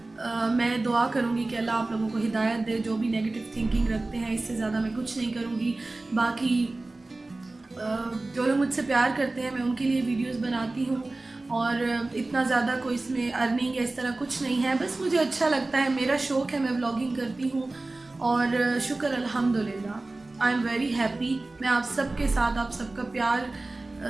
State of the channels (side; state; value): left; quieter; 3.1 dB